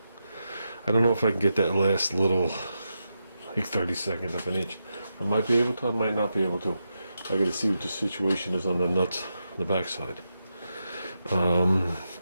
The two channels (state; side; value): inverted; both; correlation -0.87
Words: I don't know if I can get that last little, like 30 seconds of an inch. I might be able to, I might not be able to. I gotta see what the situation is on the nuts on the backside.